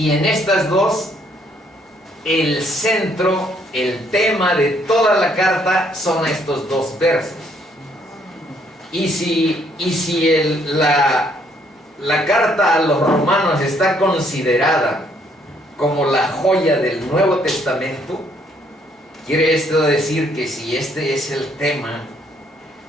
en estas 2, el centro, el tema de toda la carta son estos 2 versos. Y si la carta a los romanos está considerada como la joya del Nuevo Testamento, Quiere esto decir que si este es el tema,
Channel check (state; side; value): normal; both; correlation 0.68